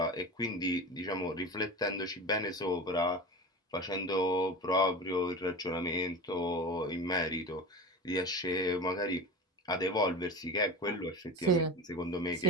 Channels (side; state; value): both; normal; correlation 0.28